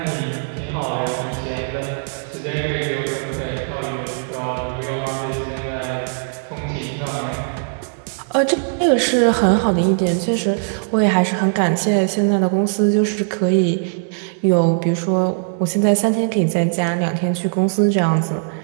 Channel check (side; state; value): left; silent; digital silence